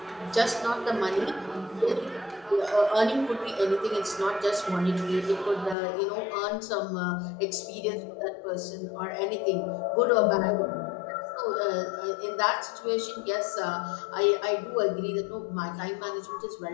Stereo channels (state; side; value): drops out; right; at 5.8 s